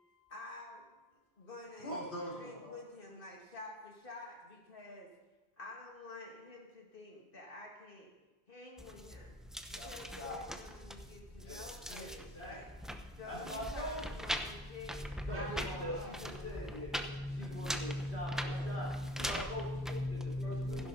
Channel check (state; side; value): normal; both; correlation 0.51